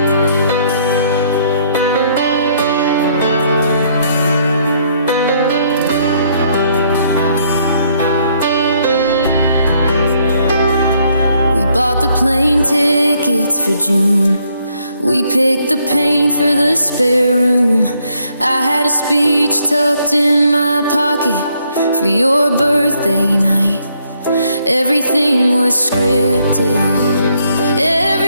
We bought the plane tickets for June. We picked the paint for the spare room. I had a speech tucked in my pocket for your birthday night. Everything was scripted,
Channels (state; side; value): inverted; both; correlation -0.70